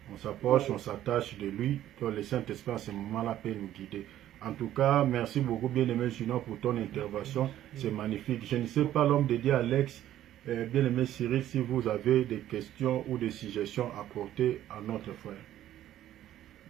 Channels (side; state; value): left; quieter; 12.5 dB